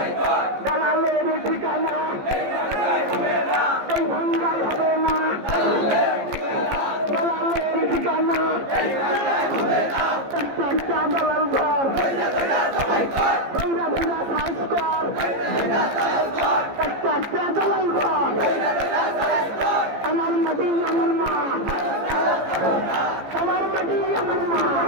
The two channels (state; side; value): late; left; 15 ms